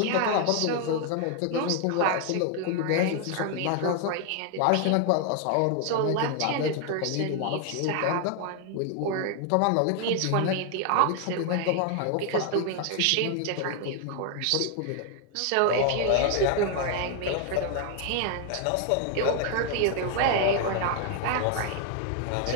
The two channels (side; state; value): both; different; correlation 0.00